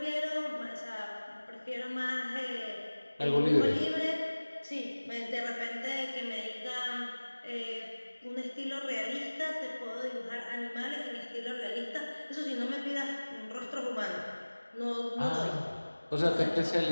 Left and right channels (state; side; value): inverted; both; correlation -1.00